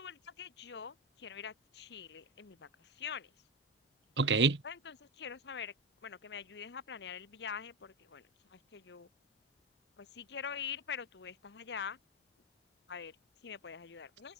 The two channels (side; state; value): both; normal; correlation 0.15